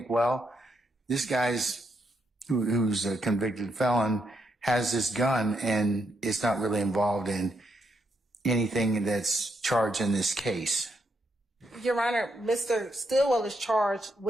well, this guy's, who's a convicted felon, has this gun and it's not really involved in anything that's charged in this case. Your Honor, Mr. Stillwell is charged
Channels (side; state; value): both; normal; correlation 0.79